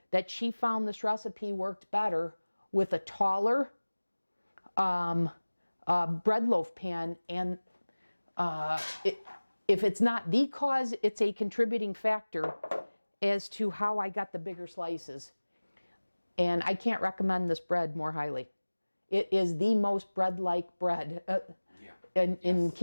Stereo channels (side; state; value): both; inverted; correlation -1.00